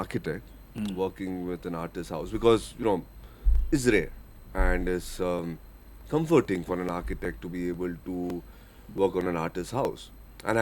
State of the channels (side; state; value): both; identical; correlation 1.00